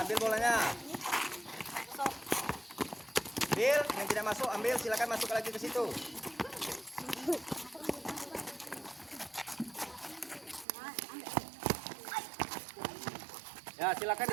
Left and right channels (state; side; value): drops out; left; at 10.7 s